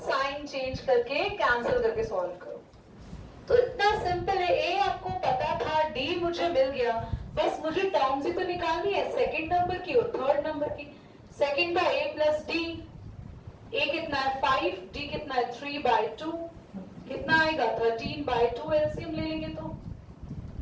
चेंज करके कैंसिल करके सॉल्व करो। तो इतना सिंपल है। a आपको पता था, d मुझे मिल गया, बस मुझे टर्म्स ही तो निकालनी है, सेकंड नंबर की और थर्ड नंबर की। सेकंड का a प्लस डी, a कितना है 5, d कितना है 3/2, कितना आएगा 13/2, एलसीएम ले लेंगे तो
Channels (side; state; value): both; identical; correlation 1.00